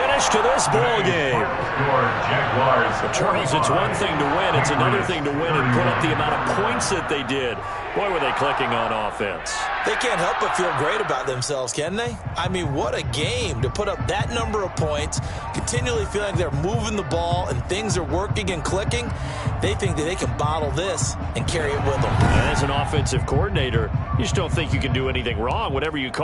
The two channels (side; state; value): both; identical; correlation 1.00